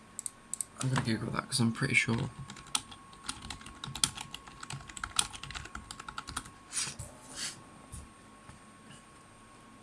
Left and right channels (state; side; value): identical; both; correlation 1.00